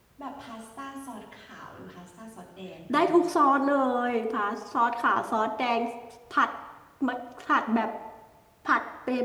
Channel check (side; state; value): both; identical; correlation 1.00